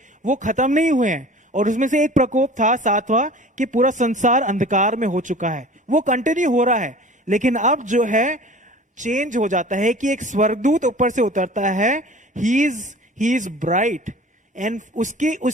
वो खत्म नहीं हुए हैं, और उसमें से एक प्रकोप था 7वां, कि पूरा संसार अंधकार में हो चुका है। वो कंटिन्यू हो रहा है, लेकिन अब जो है चेंज हो जाता है कि एक स्वर्गदूत ऊपर से उतरता है, ही इज ब्राइट, एंड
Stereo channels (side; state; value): both; normal; correlation 0.43